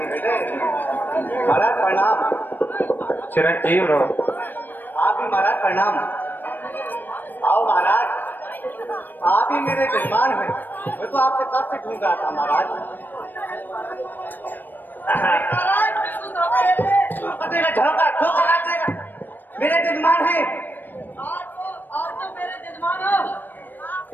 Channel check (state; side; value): late; right; 0.091 ms